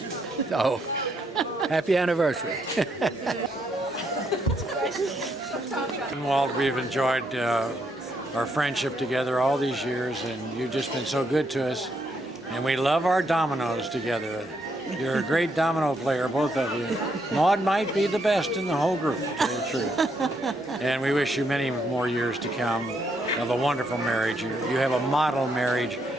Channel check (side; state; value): both; normal; correlation 0.75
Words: So, happy anniversary. Walt, we've enjoyed our friendship together all these years, and you've just been so good to us. And we love our dominoes together. You're a great domino player, both of you. Maude might be the best in the whole group, to tell you the truth. And we wish you many more years to come of a wonderful marriage. You have a model marriage,